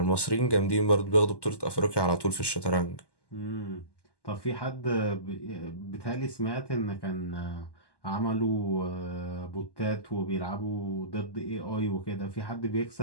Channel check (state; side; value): late; right; 1.1 ms